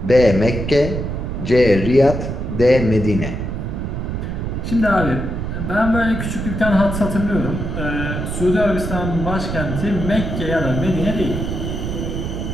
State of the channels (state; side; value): noise; right; rumble, 4 dB below the sound